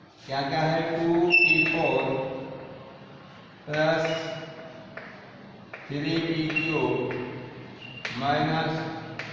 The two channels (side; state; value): both; identical; correlation 1.00